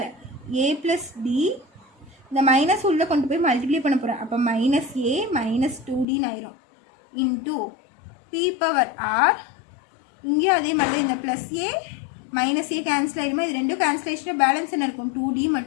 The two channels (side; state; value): right; drops out; at 6.1 s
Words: a plus d, இந்த மைனஸ் உள்ளே கொண்டு போய் மல்டிப்ளை பண்ண போகிறேன். அப்போ மைனஸ் ஏ மைனஸ் 2டின்னு ஆயிரும். இன்டூ பி பவர் ஆர், இங்கேயும் அதே மாதிரி தான். இந்த plus a minus a cancel ஆகிடுமா? இது ரெண்டும் கேன்சலேஷனாக பேலன்ஸ் என்ன இருக்கும்? 2d